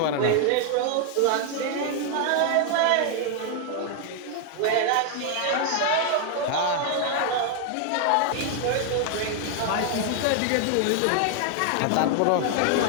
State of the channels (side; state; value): both; different; correlation 0.00